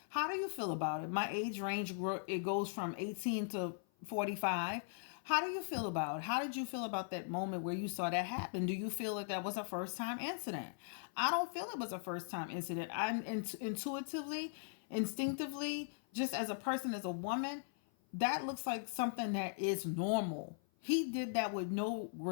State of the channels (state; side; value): silent; right; 51 dB below the other